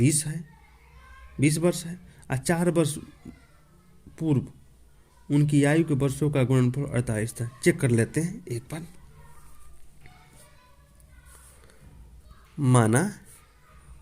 वर्ष है और 4 वर्ष पूर्व उनकी आयु के वर्षों का गुणनफल 48 था। चेक कर लेते हैं एक बार। माना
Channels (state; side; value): identical; both; correlation 1.00